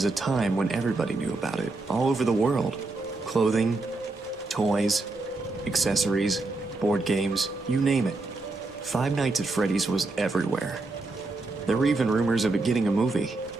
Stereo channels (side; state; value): left; quieter; 3.3 dB